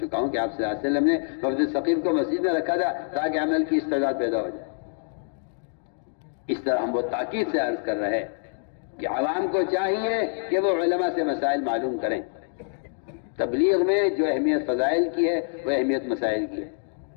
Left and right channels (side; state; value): right; silent; 61 dB below the other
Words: ہوں کہ آپ صلی اللہ علیہ وسلم نے وفد ثقیف کو مسجد میں رکھا تھا تاکہ عمل کی استعداد پیدا ہو جائے۔ اس طرح ہم وہ تاکید سے عرض کر رہے کہ عوام کو چاہیے کہ وہ علماء سے مسائل معلوم کریں۔ تبلیغ میں جو اہمیت فضائل کی ہے وہ اہمیت مسائل کی ہے۔